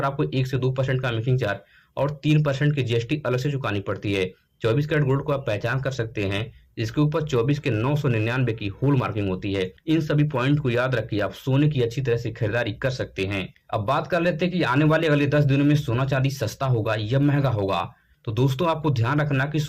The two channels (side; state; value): both; identical; correlation 1.00